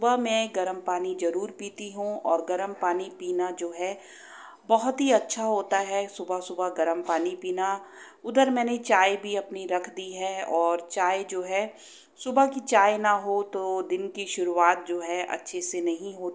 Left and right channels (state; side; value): identical; both; correlation 1.00